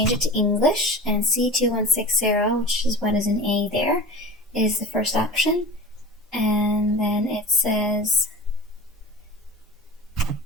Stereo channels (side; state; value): both; normal; correlation 0.35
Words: it to English, and C2160, which is what is an A there, is the first option. And then it says